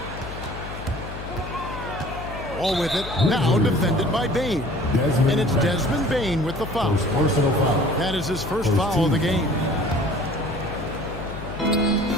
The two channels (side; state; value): left; noise; hum, 10 dB below the sound